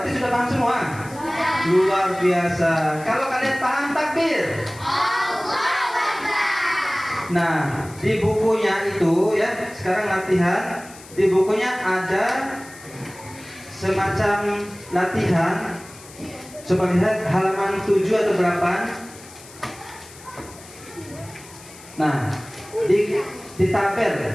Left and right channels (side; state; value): left; noise; hiss, 19 dB below the sound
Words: sudah paham semua? Luar biasa. Kalau kalian paham, takbir. Nah, di bukunya itu ya, sekarang latihan. Di bukunya ada semacam latihan. Coba lihat halaman 7 atau 8. Nah, di